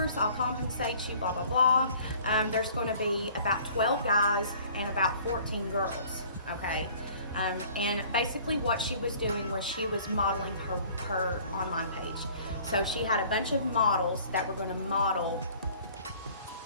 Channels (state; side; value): inverted; both; correlation -0.52